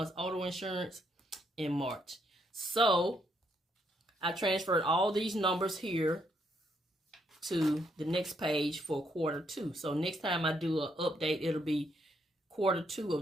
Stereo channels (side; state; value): both; normal; correlation 0.74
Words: auto insurance in March. So I transferred all these numbers here to the next page for quarter two. So next time I do an update, it'll be quarter two